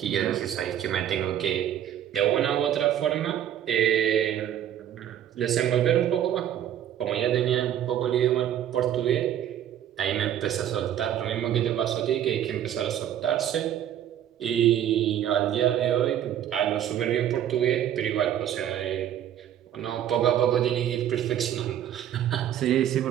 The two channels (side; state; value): left; quieter; 10.7 dB